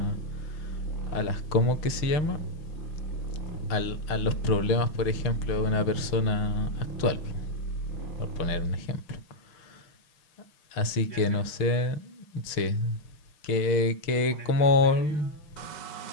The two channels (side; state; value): right; late; 6.0 ms